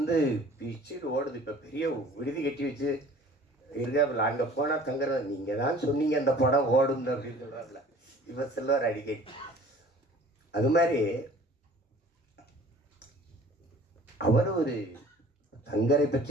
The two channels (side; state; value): both; normal; correlation 0.49